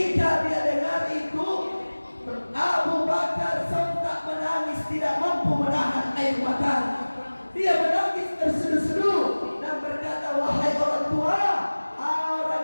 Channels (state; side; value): inverted; both; correlation -1.00